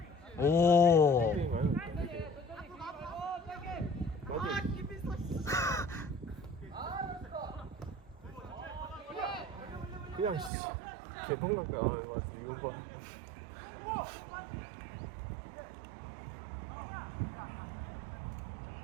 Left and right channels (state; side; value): drops out; left; at 10.5 s